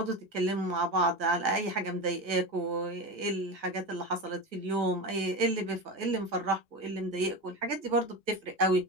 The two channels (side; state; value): left; late; 1.5 ms